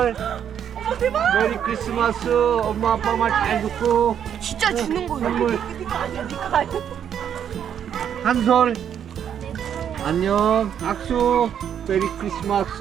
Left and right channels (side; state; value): left; quieter; 8.9 dB